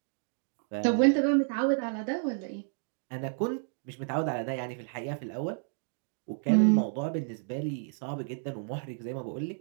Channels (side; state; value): left; silent; digital silence